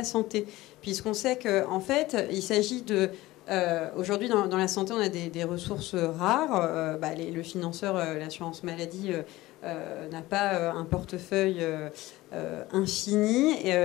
santé. Puisqu'on sait qu'en fait, il s'agit de... aujourd'hui, dans la santé, on a des ressources rares. Le financeur, l'assurance maladie... n'a pas un portefeuille infini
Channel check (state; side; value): quieter; right; 18.2 dB